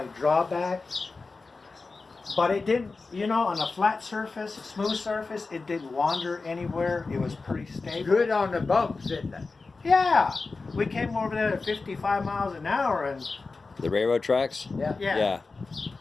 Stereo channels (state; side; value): quieter; right; 4.0 dB